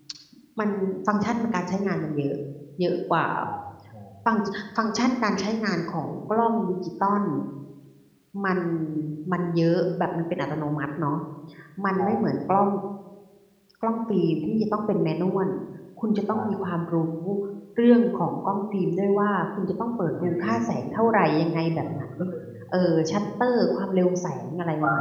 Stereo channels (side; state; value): both; identical; correlation 1.00